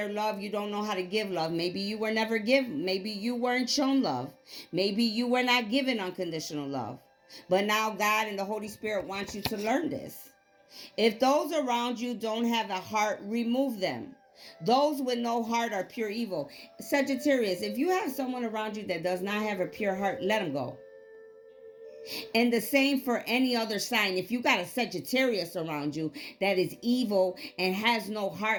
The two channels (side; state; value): both; identical; correlation 1.00